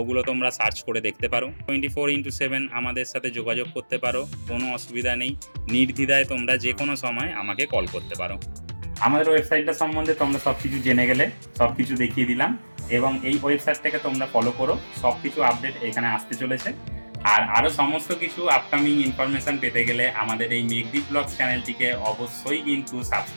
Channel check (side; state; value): both; inverted; correlation -1.00